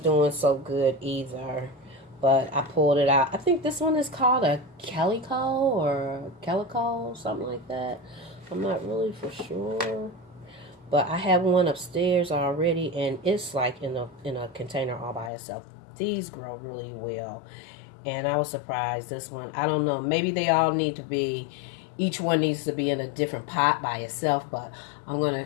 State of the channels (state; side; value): drops out; right; at 15.3 s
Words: doing so good either, but I pulled it out. I think this one is called a calico, something like that. I'm not really for sure, but I have one upstairs already, and it's like in a container all by itself. These grow really well, and I was surprised. This one, I don't know, maybe they all need to be, each one needs to be in a different pot by itself, but I'm gonna